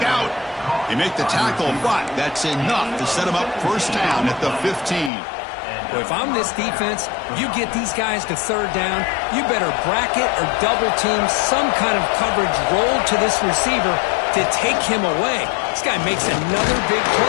out. They make the tackle, but that's enough to set them up first down at the 15. Well, if I'm this defense, you get these guys to third down, you better bracket or double team some kind of coverage roll to this receiver to take him away. This guy makes another big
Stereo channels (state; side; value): drops out; right; at 5.1 s